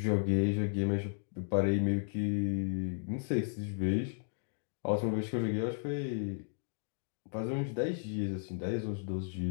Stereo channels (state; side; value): silent; right; digital silence